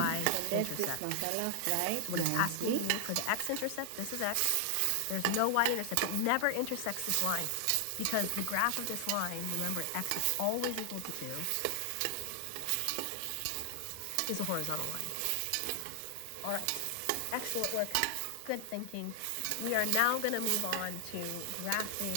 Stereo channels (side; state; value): both; different; correlation 0.00